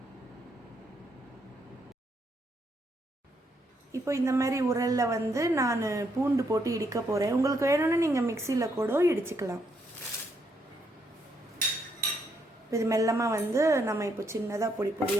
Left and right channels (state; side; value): normal; both; correlation 0.75